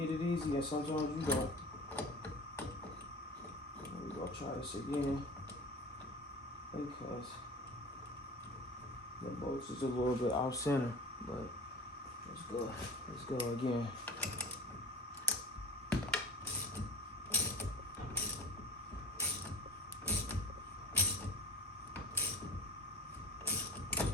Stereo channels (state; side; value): normal; both; correlation 0.36